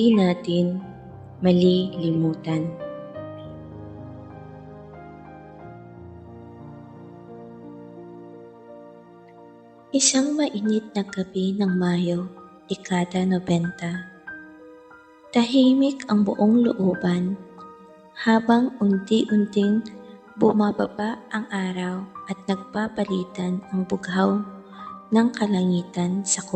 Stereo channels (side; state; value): both; identical; correlation 1.00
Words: natin malilimutan. Isang mainit na gabi ng Mayo, dekada 90. Tahimik ang buong looban habang unti-unting bumababa ang araw at nagpapalitan ang bughaw ng kalangitan sa